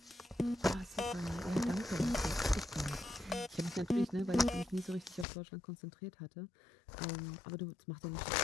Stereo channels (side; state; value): right; drops out; at 5.2 s